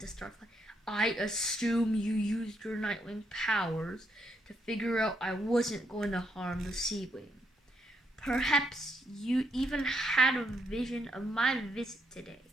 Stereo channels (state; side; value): normal; both; correlation 0.77